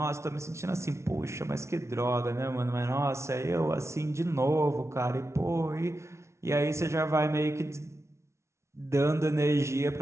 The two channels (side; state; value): left; late; 0.13 ms